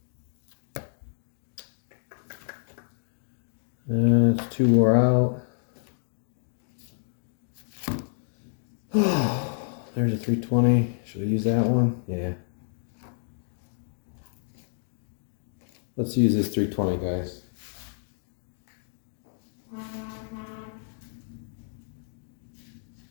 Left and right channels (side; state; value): right; silent; digital silence